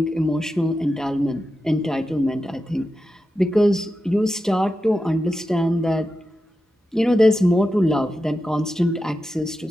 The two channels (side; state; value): both; normal; correlation 0.90